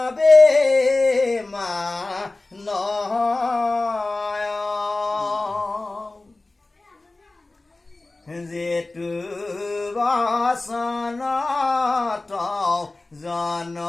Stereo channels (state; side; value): quieter; right; 3.1 dB